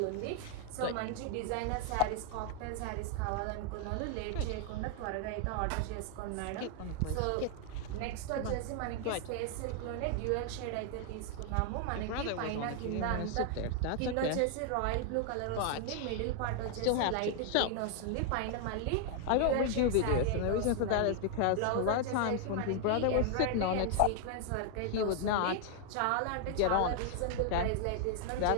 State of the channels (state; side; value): different; both; correlation 0.00